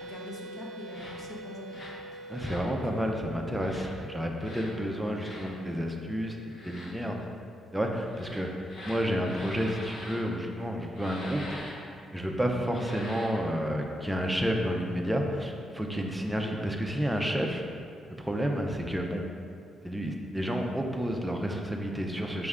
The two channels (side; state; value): both; normal; correlation 0.85